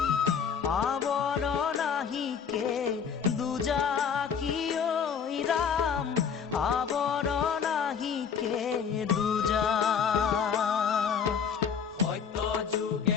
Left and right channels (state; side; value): quieter; right; 7.0 dB